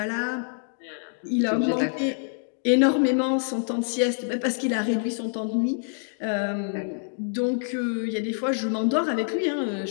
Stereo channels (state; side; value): silent; right; digital silence